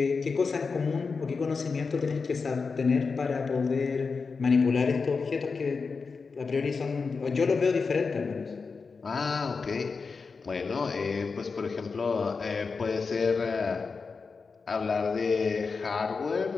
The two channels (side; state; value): right; quieter; 4.8 dB